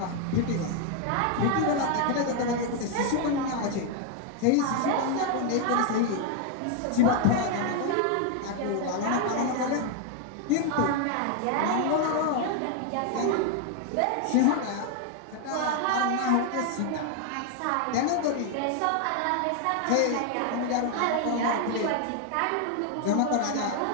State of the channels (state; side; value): different; both; correlation 0.01